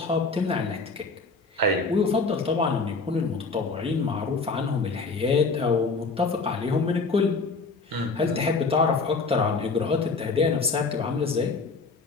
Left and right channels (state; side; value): quieter; right; 4.1 dB